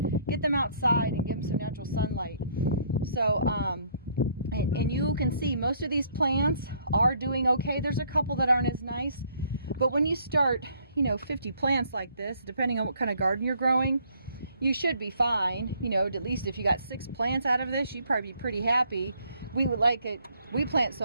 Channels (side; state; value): both; inverted; correlation -0.64